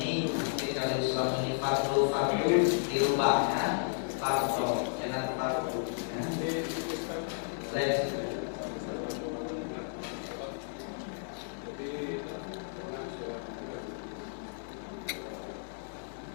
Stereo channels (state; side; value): silent; right; digital silence